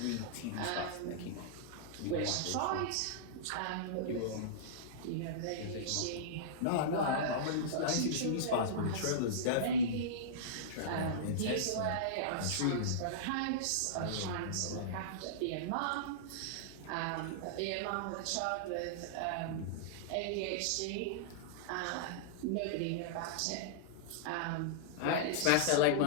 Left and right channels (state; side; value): different; both; correlation -0.03